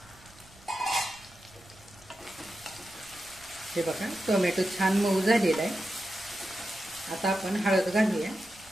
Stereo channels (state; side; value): noise; right; rumble, 25 dB below the sound